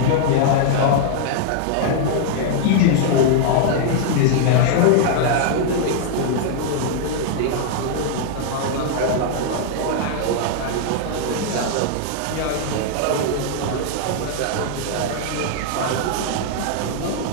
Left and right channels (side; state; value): both; different; correlation -0.01